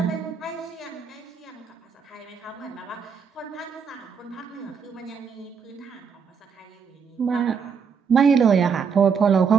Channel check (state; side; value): quieter; left; 6.3 dB